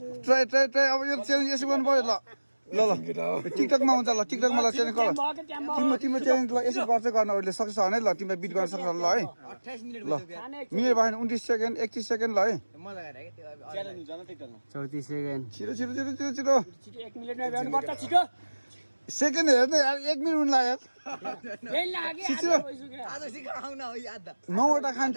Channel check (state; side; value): inverted; both; correlation -1.00